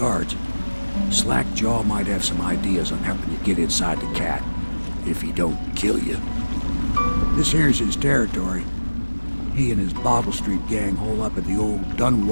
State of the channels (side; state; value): both; inverted; correlation -1.00